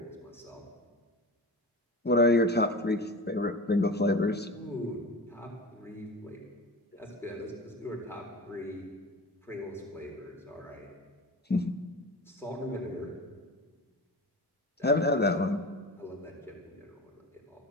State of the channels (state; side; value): normal; both; correlation 0.32